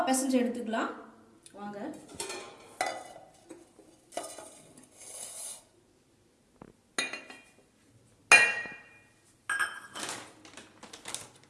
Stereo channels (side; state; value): both; identical; correlation 1.00